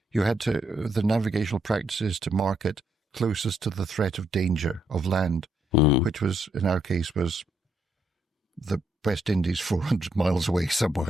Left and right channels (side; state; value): both; normal; correlation 0.75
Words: you had the navigational practices to mark it closest to the threat of danger of land, which was, in our case, was the West Indies 400 miles away